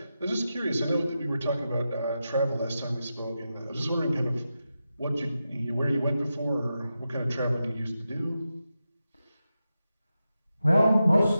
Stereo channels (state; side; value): inverted; both; correlation -0.90